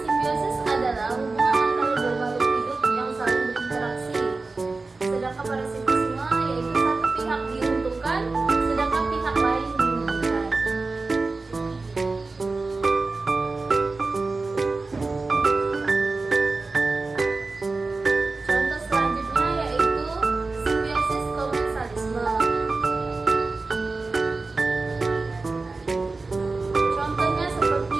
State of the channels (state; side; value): quieter; left; 3.7 dB